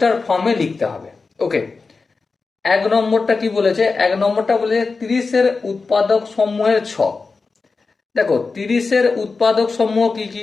ফর্মে লিখতে হবে। ওকে, এক নম্বরটা কি বলেছে? এক নম্বরটা বলেছে 30-এর উৎপাদক সমূহের ছক। দেখো, 30-এর উৎপাদক সমূহ কি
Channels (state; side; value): quieter; right; 4.3 dB